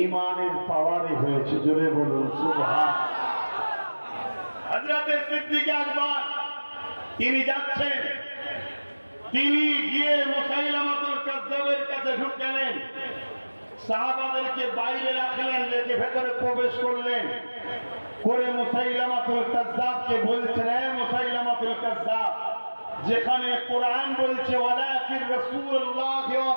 ঈমানের পাওয়ারে হয়েছে। জোরে বলুন সুবহান। হযরতে সিদ্দিক আকবর তিনি যাচ্ছেন, তিনি গিয়ে মুসাইলামাতুল কাজ্জাবের কাছে ঢুকলেন, সাহাবাদেরকে বাইরে রাখলেন, রেখে ভেতরে প্রবেশ করলেন করে মুসাইলামাতুল কাজ্জাবকে বলছেন, হে মুসাইলামাতুল কাজ্জাব, যেখানে কোরআন বলছে ওয়ালাকির রাসূলুল্লাহ ওয়া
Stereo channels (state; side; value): inverted; both; correlation -1.00